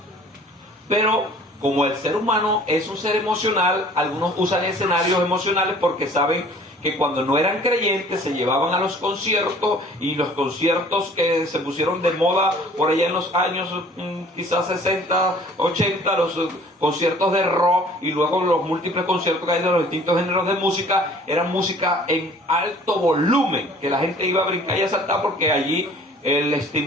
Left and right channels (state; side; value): normal; both; correlation 0.51